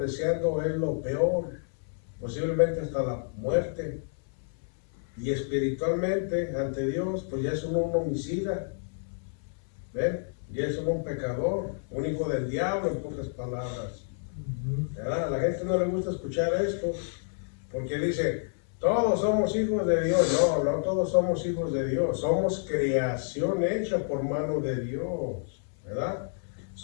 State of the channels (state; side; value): silent; right; 58 dB below the other